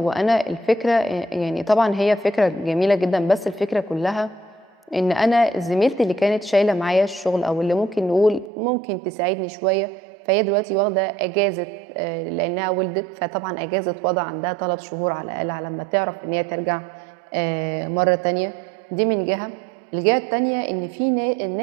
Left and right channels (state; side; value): drops out; left; at 8.5 s